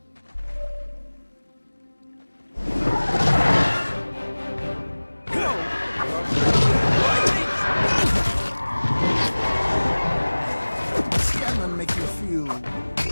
Scanlan make you feel...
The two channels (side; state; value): both; inverted; correlation -1.00